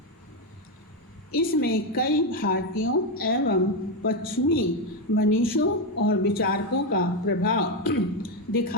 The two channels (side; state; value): both; normal; correlation 0.08